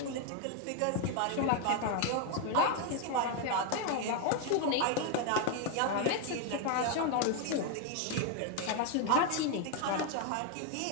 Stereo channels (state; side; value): different; both; correlation 0.01